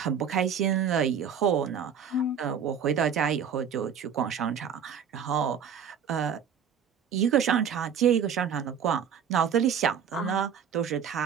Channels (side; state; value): left; quieter; 7.5 dB